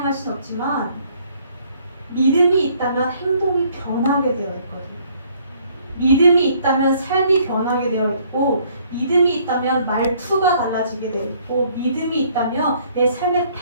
수는 없지만 믿음이 있다면 행동이 변하게 되어 있거든요. 믿음이 있다면 삶이 변하게 되어 있고 믿음이 있다면 말투가 달라지게 되어 있고 믿음이 있다면 내 삶의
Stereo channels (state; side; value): inverted; both; correlation -0.63